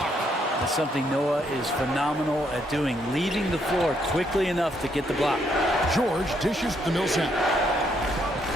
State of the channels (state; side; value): normal; both; correlation 0.73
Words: That's something Noah is phenomenal at doing, leaving the floor quickly enough to get the block. George dishes to Millsap.